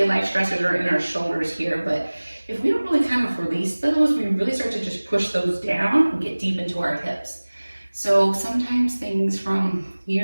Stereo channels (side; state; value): both; inverted; correlation -1.00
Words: life stressors are in our shoulders here, but if we don't really kind of release those, we really start to just push those down and get deep into our hips. So sometimes things from